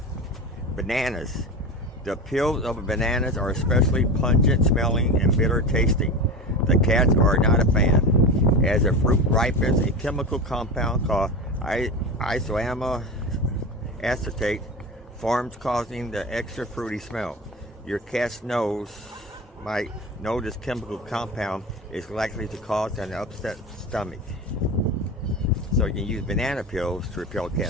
bananas. The peels of bananas are especially pungent smelling and bitter tasting. The cats are not a fan. As the fruit ripens, a chemical compound called isoamyl acetate forms, causing the extra fruity smell. Your cat's nose might know this chemical compound is likely to cause an upset stomach. So you can use banana peels to repel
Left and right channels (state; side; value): normal; both; correlation 0.26